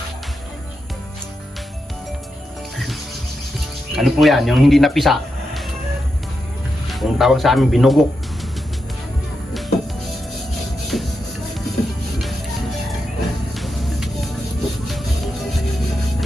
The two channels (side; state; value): both; normal; correlation 0.86